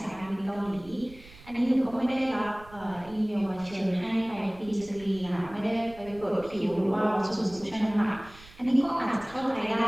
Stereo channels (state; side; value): noise; right; rumble, 21 dB below the sound